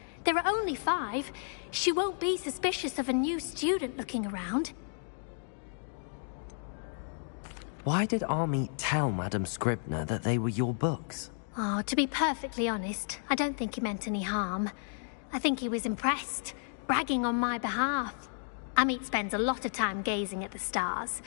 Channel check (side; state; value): right; silent; digital silence